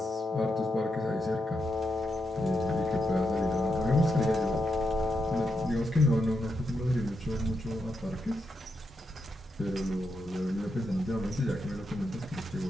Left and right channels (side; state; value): both; normal; correlation 0.84